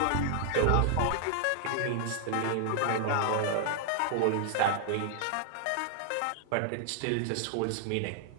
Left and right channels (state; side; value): different; both; correlation 0.00